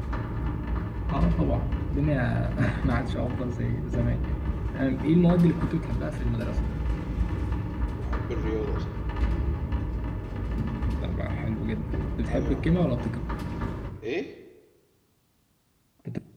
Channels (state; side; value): identical; both; correlation 1.00